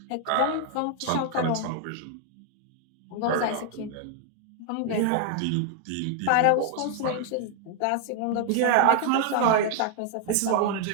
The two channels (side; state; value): both; different; correlation 0.00